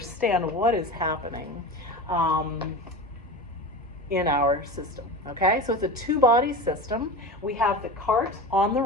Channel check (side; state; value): both; normal; correlation 0.28